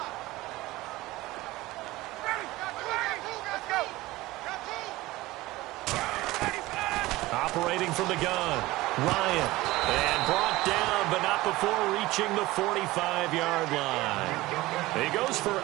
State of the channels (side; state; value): left; quieter; 18.8 dB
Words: Operating from the gun, Ryan. And brought down, but not before reaching the 45-yard line. He goes for